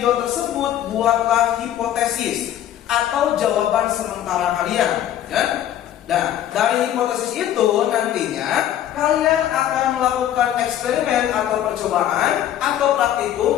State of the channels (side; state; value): right; quieter; 11.5 dB